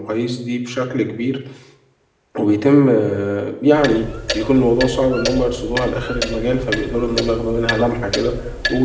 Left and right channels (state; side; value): identical; both; correlation 1.00